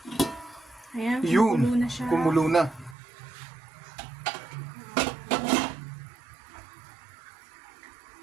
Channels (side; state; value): left; drops out; at 3.0 s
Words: Ayan, Yun, kumulo na siya. kumulo na.